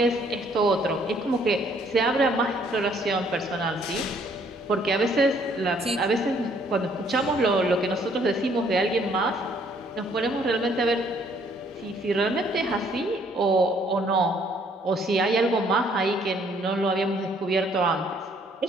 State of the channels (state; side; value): normal; both; correlation 0.64